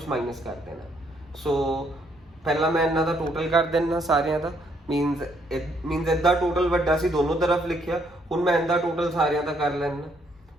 माइनस कर देना। सो पहला मैं इन्हां दा टोटल कर देना सारियां दा, मीनस इदा टोटल वड्डा सी, दोनों तरफ लिखिया, हुण मैं इदा टोटल सारियां दा कर लेना,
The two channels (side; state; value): both; normal; correlation 0.70